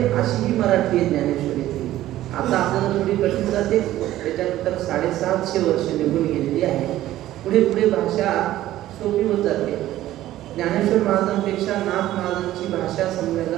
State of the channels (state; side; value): quieter; left; 14.3 dB